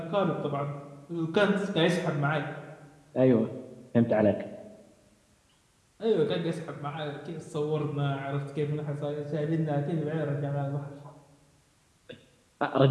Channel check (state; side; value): identical; both; correlation 1.00